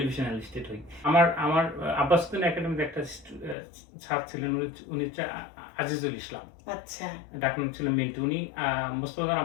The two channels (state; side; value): drops out; right; at 3.6 s